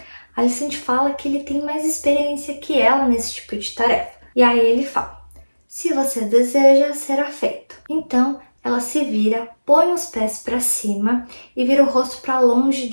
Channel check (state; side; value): inverted; both; correlation -1.00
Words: Alicent fala que ele tem mais experiência que ela nesse tipo de tarefa. E aí ele fala: se você deseja, será feito. Então ela se vira, põe os pés para cima e vira o rosto para longe